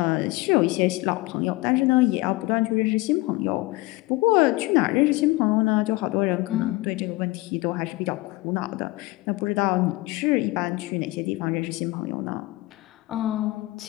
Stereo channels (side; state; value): right; quieter; 20.9 dB